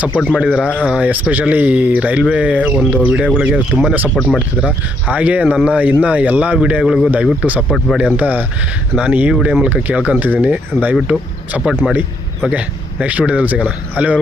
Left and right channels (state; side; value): normal; both; correlation 0.73